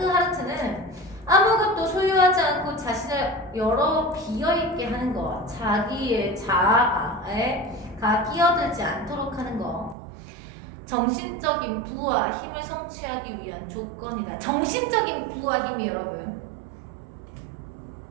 아무것도 소유하지 않고 자신을 여러 비어있게 하는 것, 자기의 자아에 끼어들지 않도록 하는 것, 정신적인 부와 힘을 성취하기 위한 조건이다. 정신적인 부와 힘이 여러분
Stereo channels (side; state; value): left; drops out; at 10.0 s